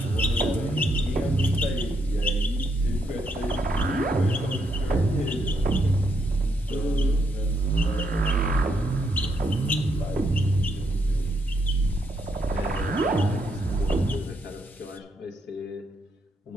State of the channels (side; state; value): both; normal; correlation 0.77